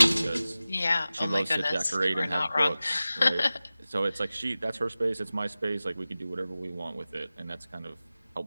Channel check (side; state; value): both; inverted; correlation -0.96